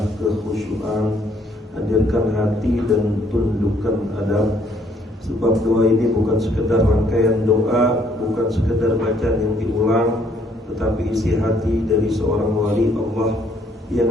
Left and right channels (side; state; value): both; normal; correlation 0.66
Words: kekhusyuan, hadirkan hati dan tundukkan adab. Sebab doa ini bukan sekedar rangkaian doa, bukan sekedar bacaan yang diulang, tetapi isi hati dari seorang wali Allah yang